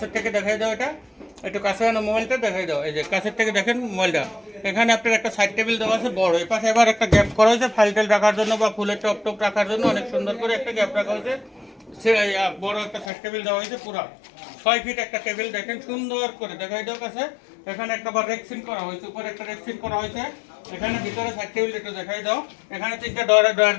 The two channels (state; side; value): drops out; right; at 13.1 s